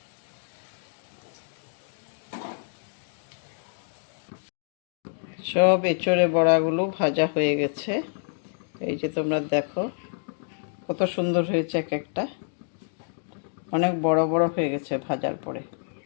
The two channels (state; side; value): silent; right; digital silence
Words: সব এঁচোড়ে বড়াগুলো ভাজা হয়ে গেছে। এই যে তোমরা দেখো কত সুন্দর হয়েছে, এক একটা অনেক বড় বড় হয়ে গেছে ভাজার পরে।